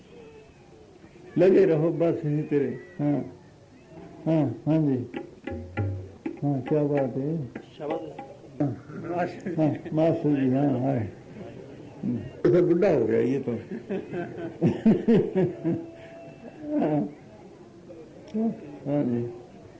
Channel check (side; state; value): both; identical; correlation 1.00